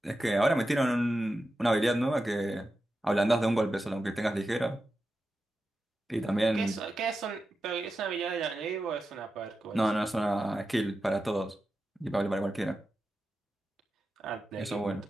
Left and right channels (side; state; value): both; normal; correlation 0.91